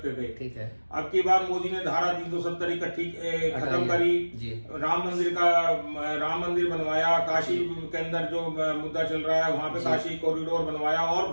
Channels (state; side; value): inverted; both; correlation -1.00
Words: थे। ठीक है। अब की बार मोदी ने धारा 370 इकट्ठी खत्म करी, राम मंदिर बनवाया, काशी के अंदर जो मुद्दा चल रहा है वहाँ पे काशी कॉरिडोर बनवाया, और